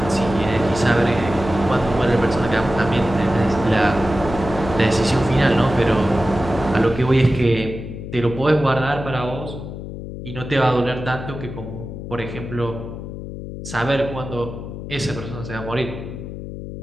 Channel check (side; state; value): left; noise; hum, 9 dB below the sound